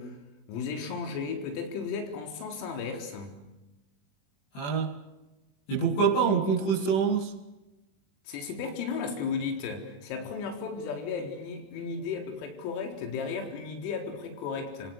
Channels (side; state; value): right; late; 21 ms